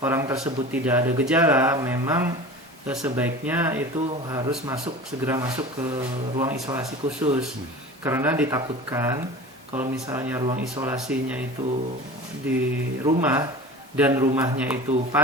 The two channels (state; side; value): normal; both; correlation 0.36